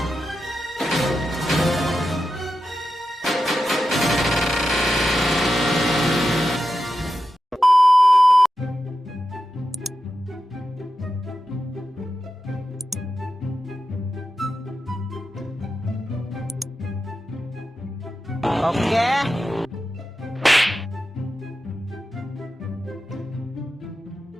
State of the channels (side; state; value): both; normal; correlation 0.90